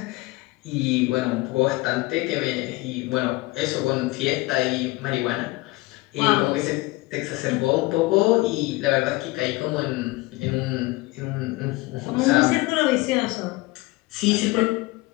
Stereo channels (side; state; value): right; quieter; 21.5 dB